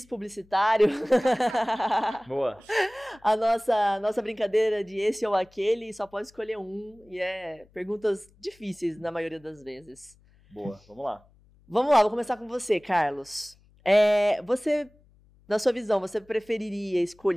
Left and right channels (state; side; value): noise; left; hum, 30 dB below the sound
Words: publicitário. Boa. A nossa brincadeira de esse ou aquele, só pode escolher um, e perguntas difíceis na maioria das vezes. Boa, vamos lá. Vamos lá, vou começar com você, Carlos. Na sua visão, você preferiria